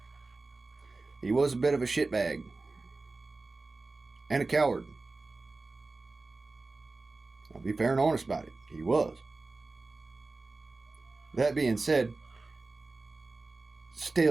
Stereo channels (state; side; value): quieter; left; 3.5 dB